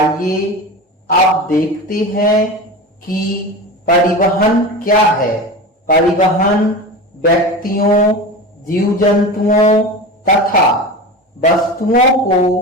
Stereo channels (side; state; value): both; normal; correlation 0.28